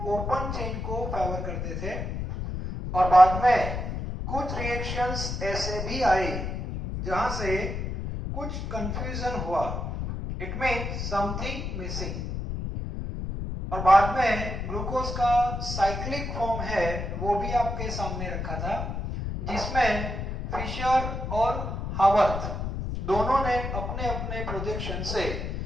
ओपन चेन को फेवर करते थे और बाद में कुछ रिएक्शंस ऐसे भी आए जहां से कुछ कंफ्यूजन हुआ, इट मीन्स समथिंग मिसिंग। और बाद में ग्लूकोज का साइक्लिक फॉर्म है वो भी आपके सामने रखा था, जिसमें फिशर और हावर्थ दोनों ने अपने अपने प्रोजेक्शन से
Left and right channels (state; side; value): noise; left; rumble, 4 dB below the sound